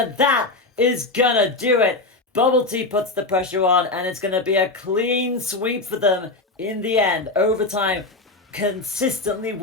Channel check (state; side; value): quieter; right; 3.2 dB